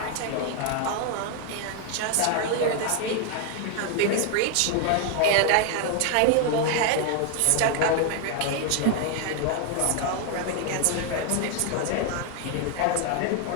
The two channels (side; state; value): both; different; correlation 0.00